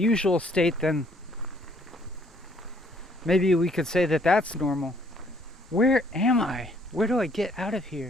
state, then maybe we could say that that's normal. Where am I? Where do I get out of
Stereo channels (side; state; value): both; normal; correlation 0.64